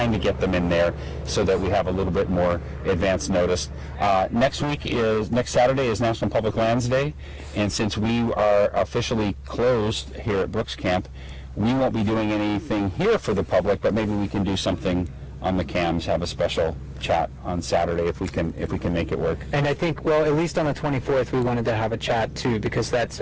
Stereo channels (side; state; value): both; identical; correlation 1.00